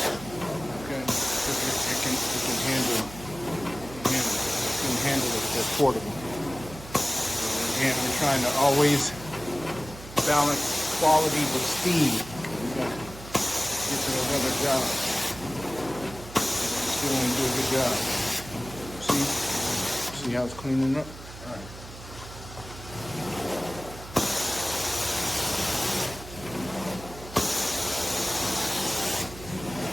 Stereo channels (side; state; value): right; noise; hum, 15 dB below the sound